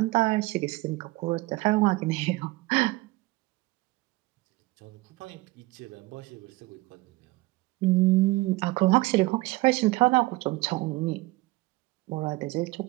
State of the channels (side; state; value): left; quieter; 20.8 dB